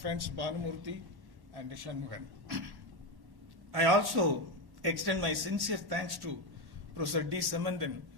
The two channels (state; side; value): late; left; 1.1 ms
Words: Bhanumurthy and Shanmugan. I also extend my sincere thanks to Professor D. Samandan,